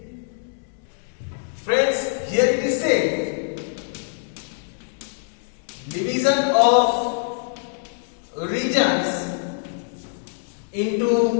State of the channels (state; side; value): silent; right; digital silence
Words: Friends, here it is said, division of regions